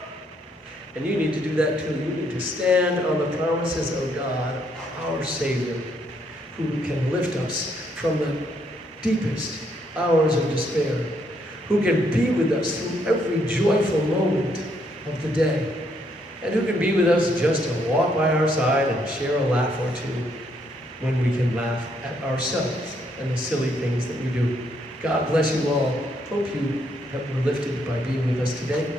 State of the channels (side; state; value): both; normal; correlation 0.72